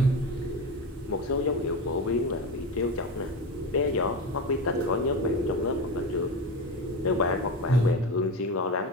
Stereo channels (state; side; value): normal; both; correlation 0.22